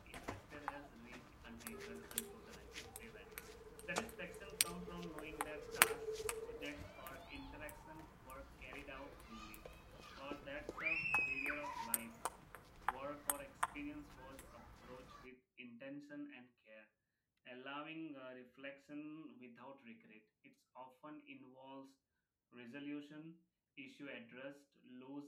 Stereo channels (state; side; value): identical; both; correlation 1.00